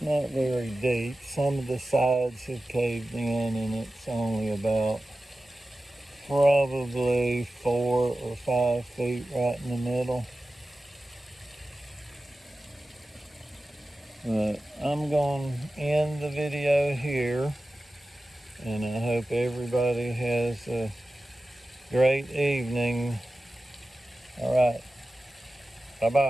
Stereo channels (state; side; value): normal; both; correlation 0.95